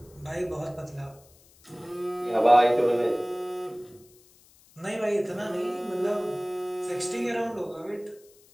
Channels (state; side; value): noise; left; hiss, 28 dB below the sound